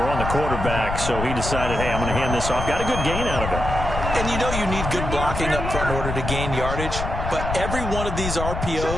on the quarterback, so he decided, hey, I'm going to hand this off. Got a good gain out of it. And you know you need good blocking up front in order to gain yardage, but every one of these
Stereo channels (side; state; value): left; noise; rumble, 4 dB below the sound